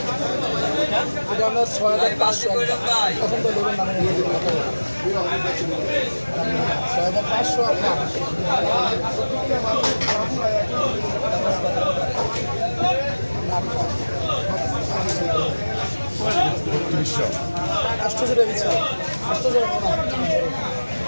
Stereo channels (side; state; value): both; inverted; correlation -1.00